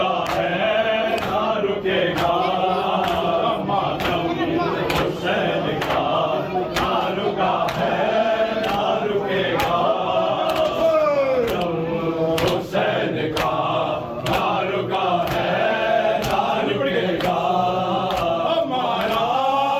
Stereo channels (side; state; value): both; identical; correlation 1.00